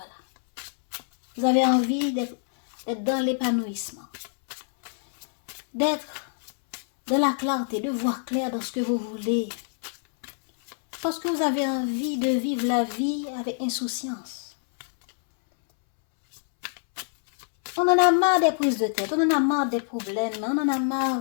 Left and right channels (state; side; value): silent; right; 61 dB below the other